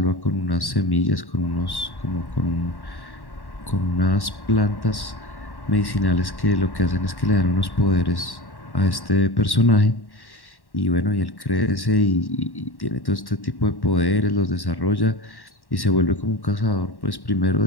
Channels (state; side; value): late; right; 1.1 ms